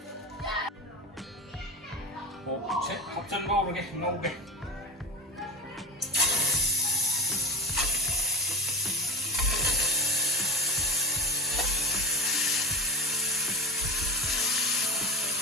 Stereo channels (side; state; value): both; normal; correlation 0.31